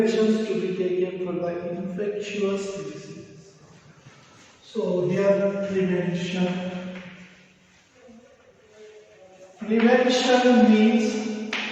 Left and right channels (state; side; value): identical; both; correlation 1.00